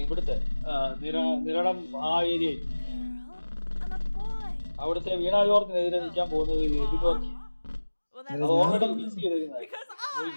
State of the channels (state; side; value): inverted; both; correlation -1.00